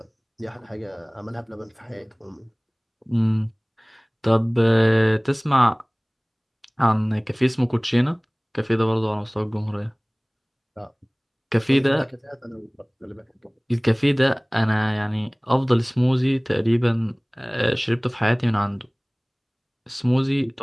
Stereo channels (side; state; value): both; identical; correlation 1.00